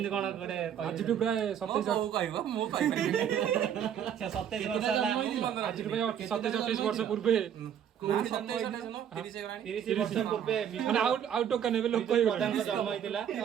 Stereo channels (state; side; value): quieter; left; 9.1 dB